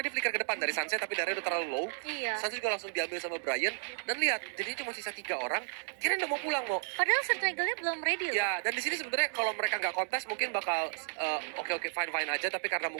dia flicker ke depan dari Sansnya, tapi darahnya udah terlalu low. Iya. Sans juga langsung diambil sama Brian, dan lihat jadinya cuma sisa 3 orang. Kirain udah mau pulang mau. Padahal Circle-nya belum ready loh. Ya, dan di sini sebenarnya kalau mereka nggak kontes mungkin bakal oke fine aja, tapi karena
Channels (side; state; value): left; silent; digital silence